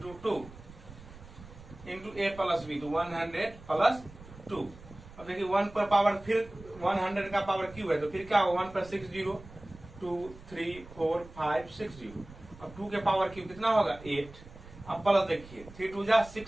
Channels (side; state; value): right; noise; rumble, 18 dB below the sound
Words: 2 into a plus b तो 100 प्लस 2। अब देखिए 1 पर पावर फिर 100 का पावर क्यूब है तो फिर क्या होगा 1 पर 6 0 2 3 4 5 6 0। अब 2 के पावर क्यूब कितना होगा 8, अब प्लस देखिए 3 2 जा